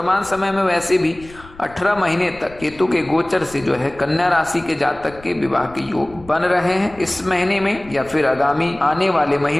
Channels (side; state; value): left; noise; rumble, 22 dB below the sound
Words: समय में वैसे भी 18 महीने तक केतु के गोचर से जो है कन्या राशि के जातक के विवाह के योग बन रहे हैं। इस महीने में या फिर आगामी आने वाले